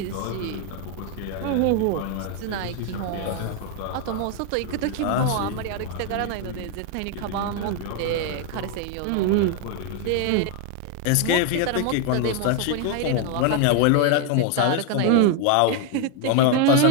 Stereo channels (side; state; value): both; different; correlation 0.01